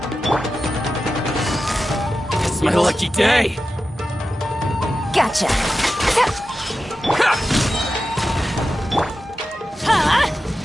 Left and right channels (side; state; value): both; normal; correlation 0.92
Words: It's my lucky day! Gotcha.